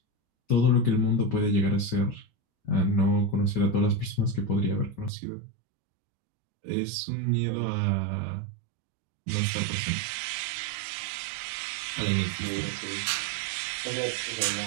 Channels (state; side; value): drops out; left; at 5.1 s